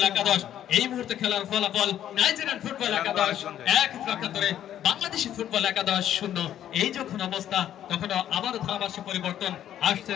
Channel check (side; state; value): right; quieter; 11.1 dB